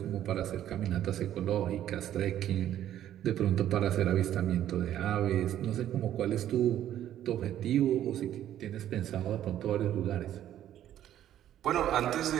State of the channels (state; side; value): quieter; left; 11.6 dB